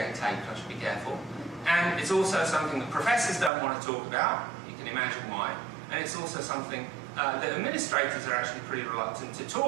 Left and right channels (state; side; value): drops out; left; at 3.5 s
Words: taped, I should be careful. And it's also something that professors don't want to talk about. You can imagine why. And it's also something that administrators are actually pretty reluctant to